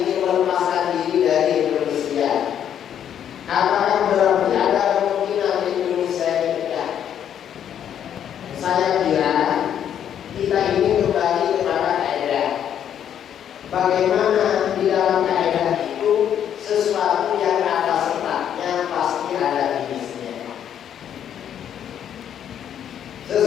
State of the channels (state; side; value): quieter; right; 9.5 dB